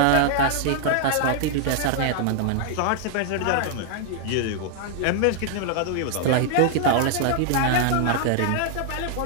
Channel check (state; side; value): different; both; correlation 0.00